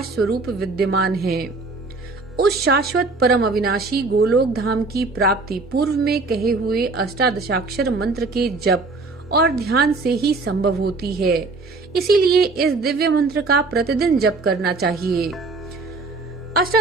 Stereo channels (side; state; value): left; quieter; 3.7 dB